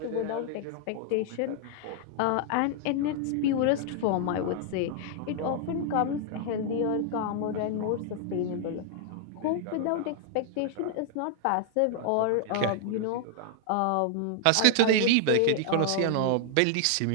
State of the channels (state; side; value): different; both; correlation 0.00